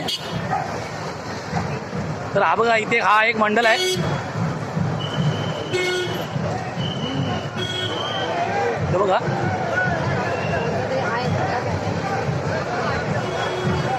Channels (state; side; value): identical; both; correlation 1.00